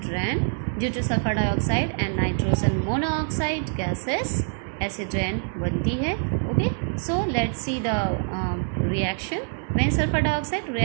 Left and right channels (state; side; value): silent; left; 62 dB below the other